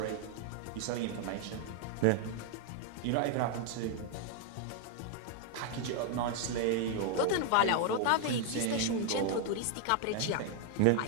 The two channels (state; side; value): different; both; correlation 0.00